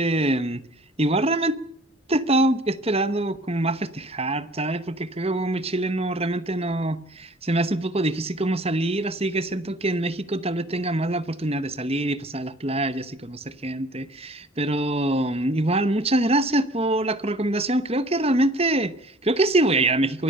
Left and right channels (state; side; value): normal; both; correlation 0.51